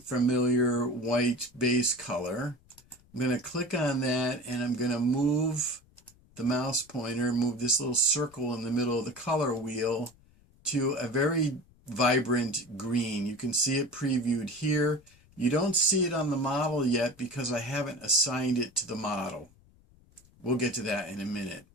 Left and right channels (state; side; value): noise; left; rumble, 29 dB below the sound